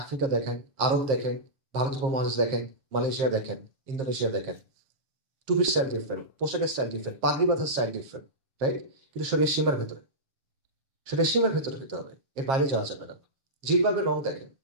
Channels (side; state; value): left; late; 7.5 ms